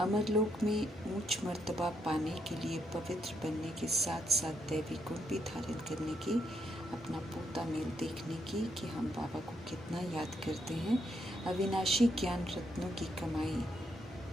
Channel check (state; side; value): normal; both; correlation 0.78